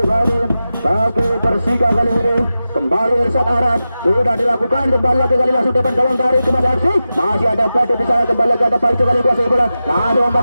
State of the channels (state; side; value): inverted; both; correlation -0.93